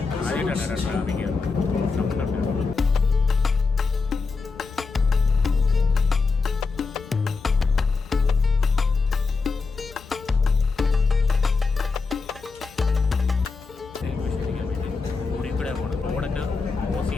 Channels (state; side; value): quieter; right; 4.4 dB